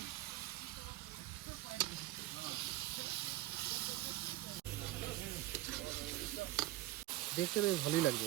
দেখতে তো ভালোই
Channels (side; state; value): left; quieter; 15.9 dB